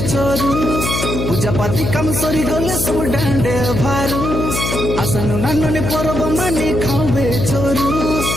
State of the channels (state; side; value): noise; left; hum, 2 dB below the sound